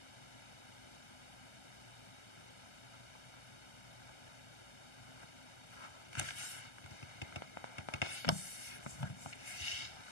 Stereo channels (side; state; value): right; late; 1.3 ms